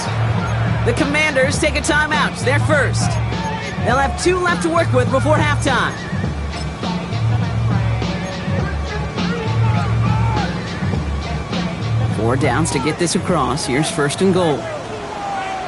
The Commanders take a timeout. They're first. They'll have 2 left to work with before halftime. Four downs to get this across. Here's 1st and goal.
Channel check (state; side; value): identical; both; correlation 1.00